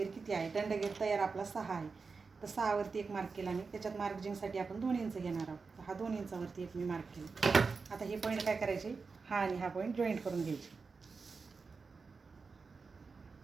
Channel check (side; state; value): left; quieter; 4.7 dB